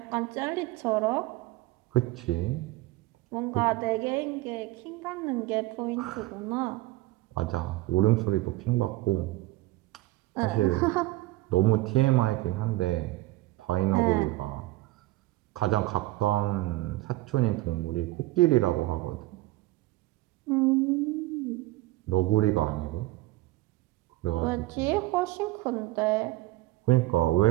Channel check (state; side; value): quieter; left; 18.7 dB